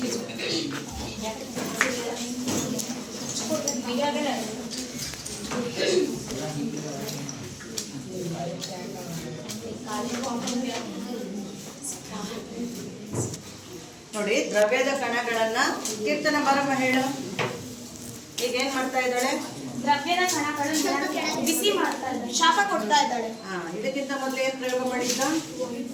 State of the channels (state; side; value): identical; both; correlation 1.00